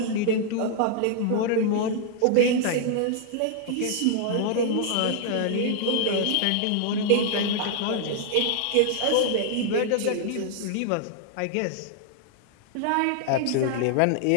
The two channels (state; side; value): different; both; correlation 0.00